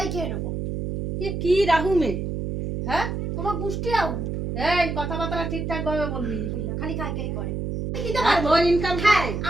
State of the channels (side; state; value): right; noise; hum, 3 dB below the sound